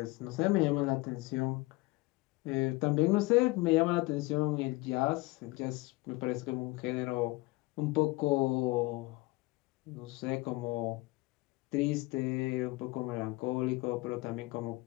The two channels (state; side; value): quieter; right; 22.0 dB